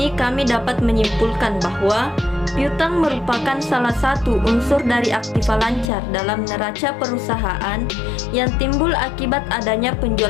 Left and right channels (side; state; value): right; drops out; at 5.9 s